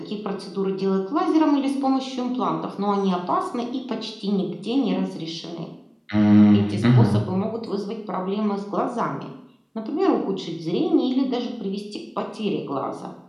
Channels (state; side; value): identical; both; correlation 1.00